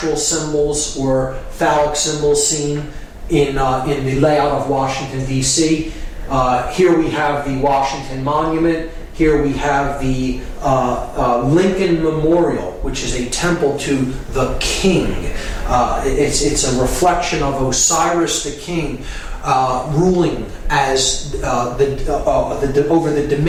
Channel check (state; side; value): identical; both; correlation 1.00